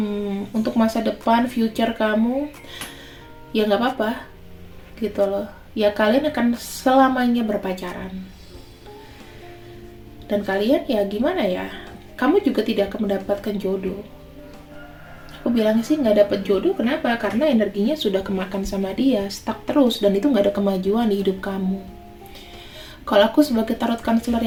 untuk masa depan, future kamu, ya nggak apa-apa gitu loh. Ya kalian akan selamanya berpacaran. Dan kalian ya gimana ya, kamu juga tidak akan mendapatkan jodoh. Aku bilang sih nggak dapat jodoh, kenapa? Karena energinya sudah kemakan sama dia, stuck terus, dan itu nggak ada kemajuan di hidup kamu. Kalau aku sebagai tarot counselor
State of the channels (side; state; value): both; identical; correlation 1.00